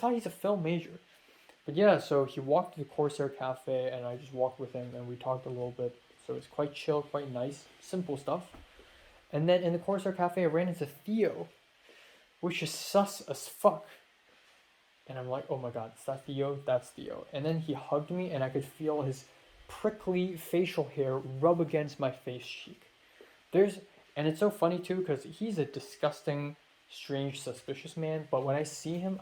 he's a film major. But yeah, so he walked to the Corsair Cafe, and I just walked with him, and we talked a little bit. So it's quite chill, quite nice, simple stuff. And then in the Corsair Cafe, I ran into Theo, which is sus as fuck. And I'm like, oh my god, is that Theo? That's Theo. And then he hugged me, and I could feel his prickly facial hair rub against my face cheek. And it's so funny too, because he's a disgusting, strange, suspicious man, but when I see him,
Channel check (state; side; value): identical; both; correlation 1.00